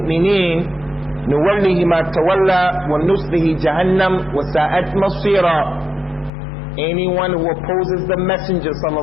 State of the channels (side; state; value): right; drops out; at 6.3 s